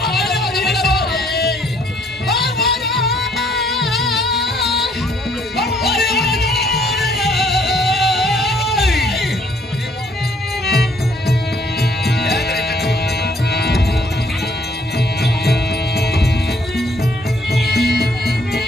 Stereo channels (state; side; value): normal; both; correlation 0.65